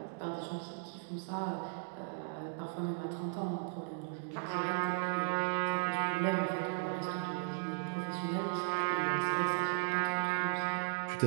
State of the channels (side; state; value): left; silent; digital silence